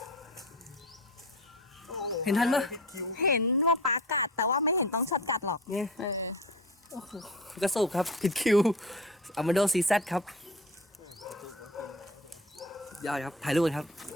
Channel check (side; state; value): both; normal; correlation 0.33